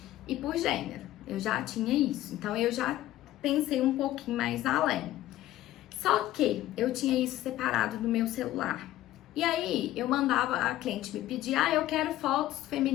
e por gênero. Eu já tinha isso, então eu já pensei um pouquinho mais além. Só que eu tinha isso separado no meu celular. E aí eu mandava, a cliente me pedir, eu quero fotos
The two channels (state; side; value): quieter; right; 14.5 dB